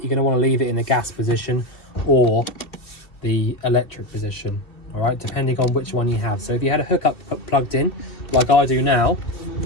going to want to leave it in the gas position or the electric position, all right, depending on which one you have. So if you had a hookup plugged in, like I do now,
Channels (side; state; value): right; late; 2.8 ms